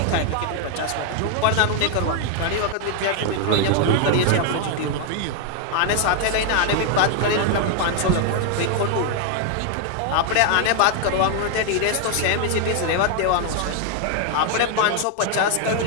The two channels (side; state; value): both; different; correlation 0.00